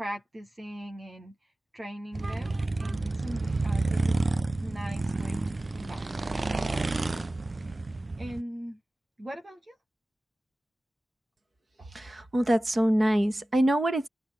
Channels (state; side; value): normal; both; correlation 0.96